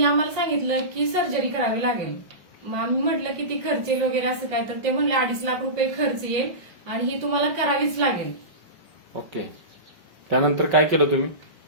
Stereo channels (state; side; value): late; left; 5.6 ms